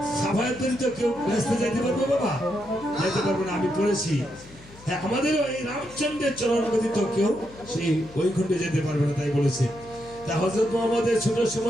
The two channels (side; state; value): left; noise; hum, 22 dB below the sound